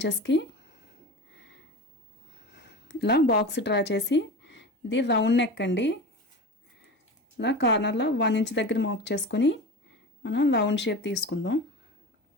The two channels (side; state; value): both; normal; correlation 0.29